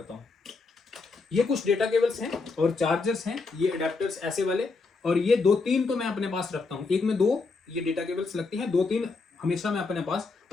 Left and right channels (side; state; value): right; quieter; 4.1 dB